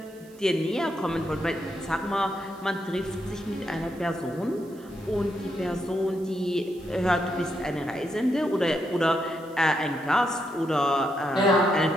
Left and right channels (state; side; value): noise; right; hiss, 27 dB below the sound